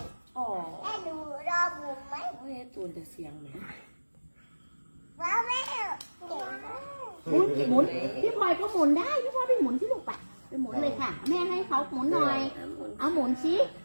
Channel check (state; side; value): inverted; both; correlation -1.00